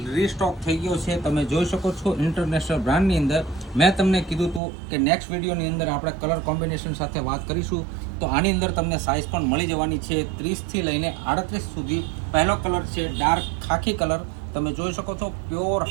રીસ્ટોક થઈ ગયો છે. તમે જોઈ શકો છો ઇન્ટરનેશનલ બ્રાન્ડની અંદર. મેં તમને કીધું હતું કે નેક્સ્ટ વિડીયોની અંદર આપણે કલર કોમ્બિનેશન સાથે વાત કરીશું. તો આની અંદર તમને સાઇઝ પણ મળી જવાની છે 30થી લઈને 38 સુધી. પહેલો કલર છે ડાર્ક ખાખી કલર. તમે જોઈ શકો છો પ્યોર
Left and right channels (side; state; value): left; drops out; at 4.6 s